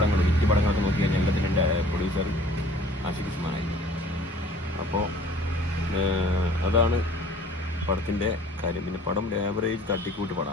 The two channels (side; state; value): both; normal; correlation 0.52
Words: ഹിറ്റ് പടങ്ങളൊക്കെ നോക്കി കഴിഞ്ഞാൽ എല്ലാത്തിൻ്റെ പ്രൊഡ്യൂസർ ആഷിഖ് ഉസ്മാനായിരുന്നു. അപ്പോൾ അതാണ് പടത്തിൻ്റെ കാര്യം. പിന്നെ പടം ആവറേജ് തട്ടിക്കൂട്ട്